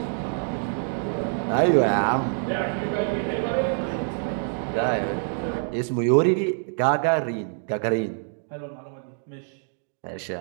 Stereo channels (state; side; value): silent; left; 61 dB below the other